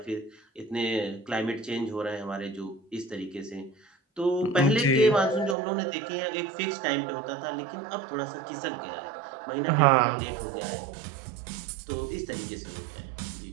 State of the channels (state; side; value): drops out; left; at 5.6 s